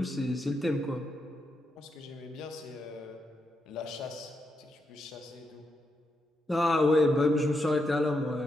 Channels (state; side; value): normal; both; correlation 0.83